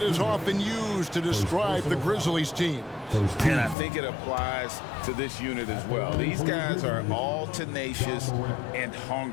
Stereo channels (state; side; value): drops out; right; at 3.8 s